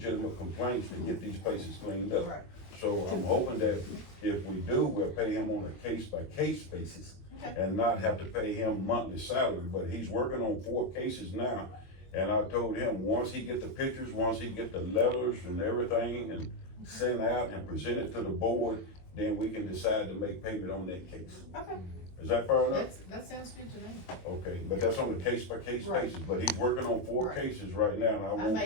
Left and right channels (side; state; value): right; late; 21 ms